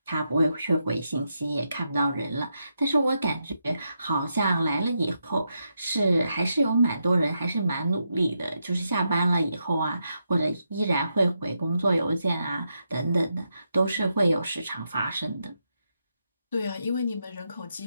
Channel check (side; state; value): both; inverted; correlation -0.83